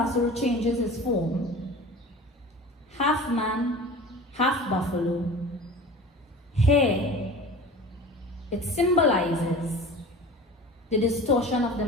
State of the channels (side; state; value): both; normal; correlation 0.38